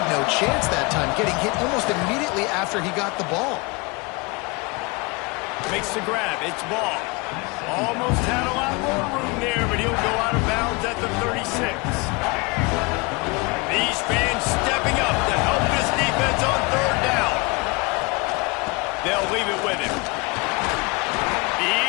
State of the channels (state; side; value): quieter; right; 27.4 dB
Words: no chance that time, getting hit almost immediately after he got the ball. Makes the grab. It's ball. Almost had a lot more room there, but he'll go out of bounds at the 36. These fans stepping up to help this defense on 3rd down. They'll leave it with him.